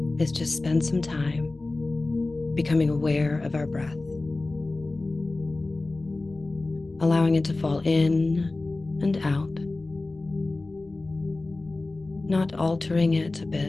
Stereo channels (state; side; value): quieter; right; 3.2 dB